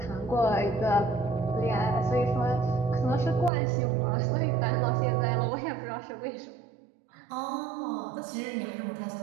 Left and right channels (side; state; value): left; drops out; at 3.5 s